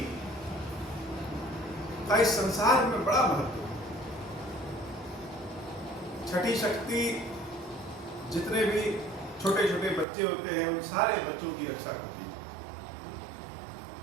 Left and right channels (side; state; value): left; drops out; at 10.1 s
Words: का इस संसार में बड़ा महत्व है। छठी शक्ति जितने भी छोटे छोटे बच्चे होते हैं उन सारे बच्चों की रक्षा करती है